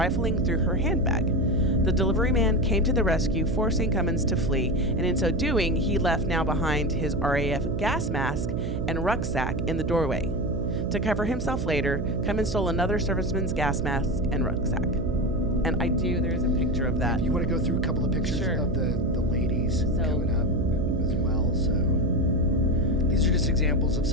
through her handbag. The delivery man came to the rescue, forcing Cummins to flee, and in so doing, he left now behind his RAF gas mask and rucksack in the doorway. To cover himself later, Cummins stole another serviceman's gas mask and rucksack. And there is a picture of that. If you want to go through a couple of pictures of the ladies coming up as well. So these are just examples of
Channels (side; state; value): right; noise; hum, 2 dB below the sound